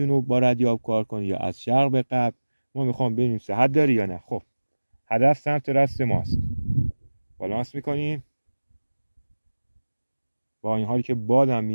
با ردیاب کار کنه یا از شرق به غرب. ما میخوام ببینیم صحت داره یا نه. خب هدف سمت راست ماست، بالانس میکنیم. با این حالی که بادم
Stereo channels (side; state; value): both; inverted; correlation -1.00